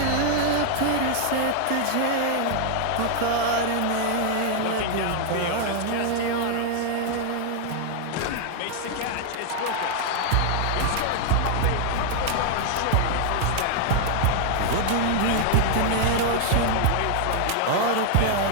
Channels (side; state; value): both; different; correlation 0.00